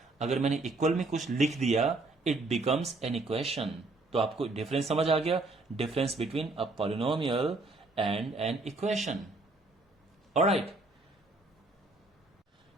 अगर मैंने इक्वल में कुछ लिख दिया, इट बिकम्स एन इक्वेशन। तो आपको डिफरेंस समझ आ गया? Difference between a polynomial and an equation. Alright,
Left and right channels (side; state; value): left; quieter; 3.1 dB